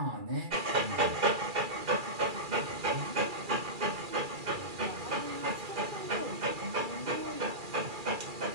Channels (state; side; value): late; left; 2.3 ms